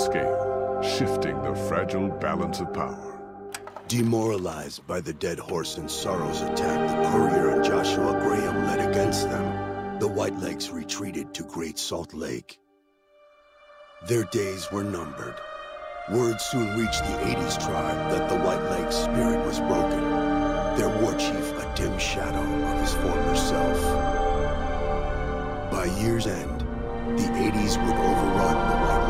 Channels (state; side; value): identical; both; correlation 1.00